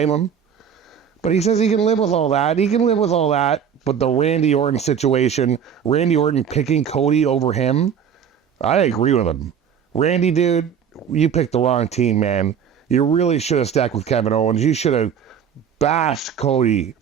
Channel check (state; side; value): quieter; left; 7.9 dB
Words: him. But he says he can live with all that. He can live with all that. But the Randy Orton situation, Randy Orton picking Cody over him, I agree with him. Randy, dude, you picked the wrong team, man. You really should have stuck with Kevin Owens. You should have bashed Cody